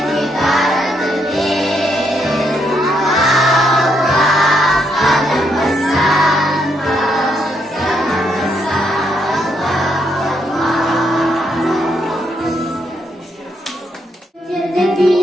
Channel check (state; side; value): normal; both; correlation 0.76